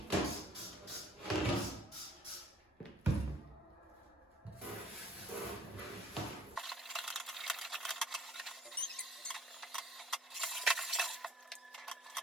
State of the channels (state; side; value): normal; both; correlation 0.56